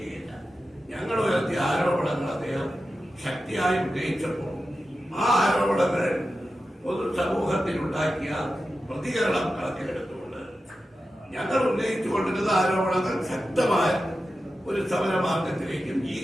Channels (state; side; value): normal; both; correlation 0.92